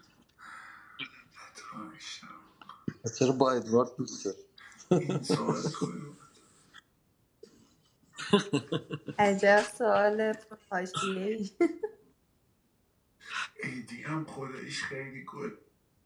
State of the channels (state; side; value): identical; both; correlation 1.00